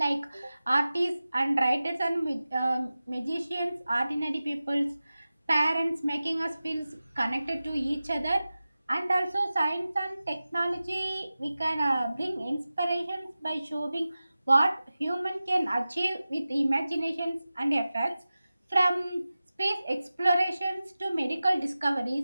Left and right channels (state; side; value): inverted; both; correlation -0.95